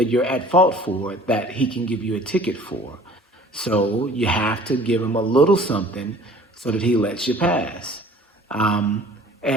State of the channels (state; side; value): normal; both; correlation 0.49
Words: you're at fault for that he can give you a ticket for. So you have to give him a little something so that he lets you pass.